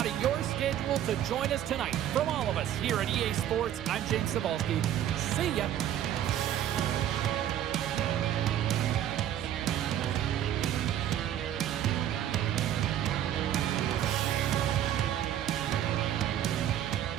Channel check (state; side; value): quieter; left; 11.1 dB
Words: of your schedule to join us tonight. From all of us here at EA Sports, I'm James Cebulski. See ya.